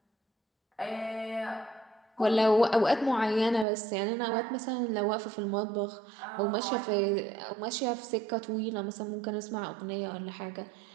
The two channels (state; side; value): drops out; left; at 3.7 s